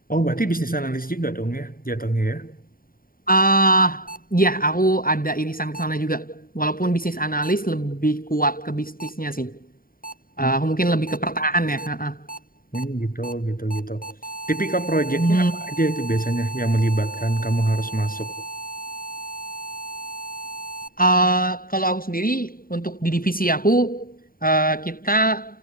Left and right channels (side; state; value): right; late; 0.42 ms